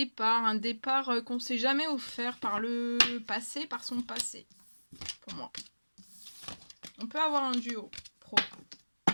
un départ qu'on ne s'est jamais offert par le passé, par son passé, pour moi. On peut avoir un duo pro.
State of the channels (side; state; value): both; inverted; correlation -1.00